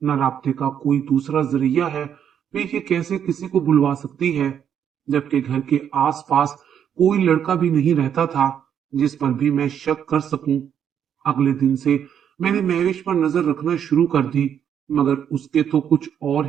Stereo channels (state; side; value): quieter; left; 8.7 dB